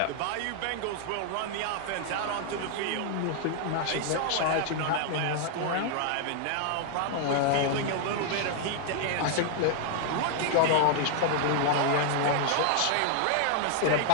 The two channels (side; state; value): both; different; correlation -0.01